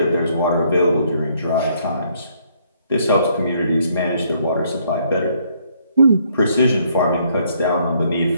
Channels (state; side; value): inverted; both; correlation -0.68